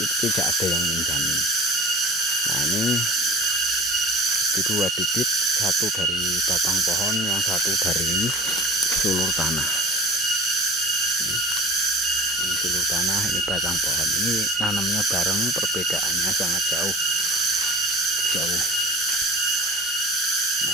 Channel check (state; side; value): normal; both; correlation 0.38